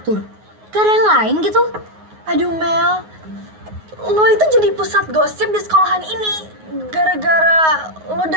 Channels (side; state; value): left; late; 9.5 ms